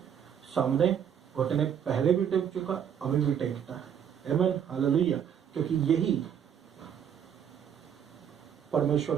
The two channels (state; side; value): quieter; left; 8.6 dB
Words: सामने घुटने पहले भी टेक चुका, अभी भी टेकता है। आमीन, हालेलुया। क्योंकि यही